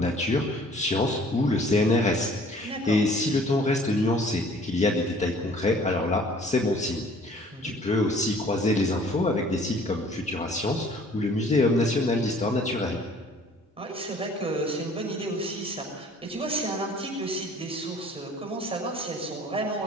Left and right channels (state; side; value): normal; both; correlation 0.53